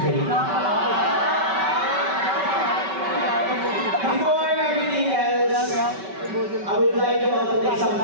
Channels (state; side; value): late; left; 5.2 ms